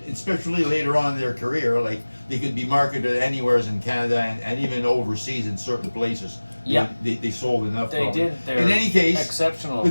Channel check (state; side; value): inverted; both; correlation -1.00